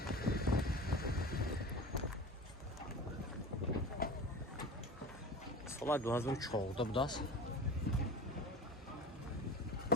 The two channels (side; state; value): both; normal; correlation 0.35